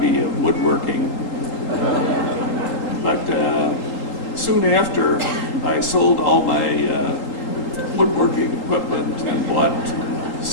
of woodworking. But soon after, I sold all my woodworking equipment and bought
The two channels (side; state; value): right; late; 3.8 ms